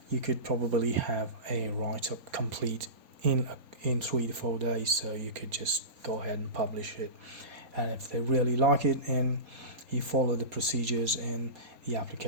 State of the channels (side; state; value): left; late; 4.2 ms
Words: you could probably have a write-up complete in 3 to 4 days. So you could just go ahead and publish it, and if they really like it and you follow the procedures and the